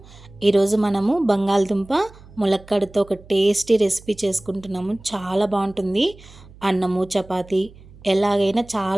ఈరోజు మనము బంగాళదుంప ములక్కాడతో ఒక టేస్టీ రెసిపీ చేసుకుంటున్నాము. చాలా బాగుంటుంది. అన్నము చపాతి ఎలాగైనా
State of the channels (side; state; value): right; noise; hum, 22 dB below the sound